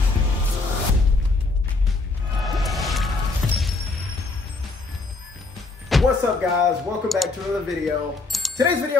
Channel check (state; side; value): quieter; right; 3.6 dB